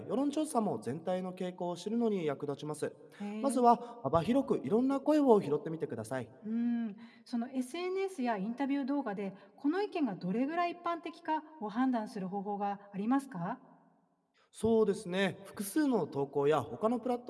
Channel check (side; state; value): both; identical; correlation 1.00